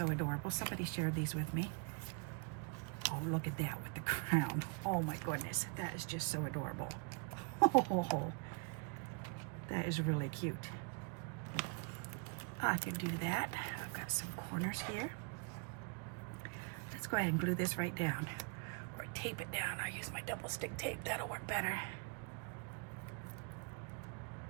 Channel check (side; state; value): left; quieter; 33.2 dB